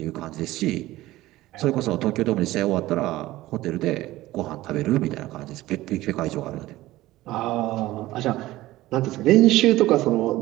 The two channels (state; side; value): quieter; left; 16.9 dB